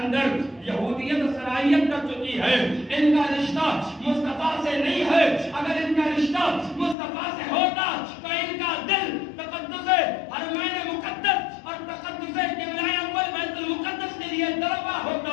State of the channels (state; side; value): drops out; right; at 7.0 s